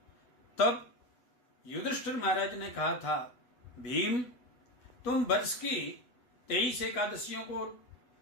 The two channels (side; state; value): right; late; 8.0 ms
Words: तब युधिष्ठिर महाराज ने कहा था, भीम, तुम वर्ष की 23 एकादशियों को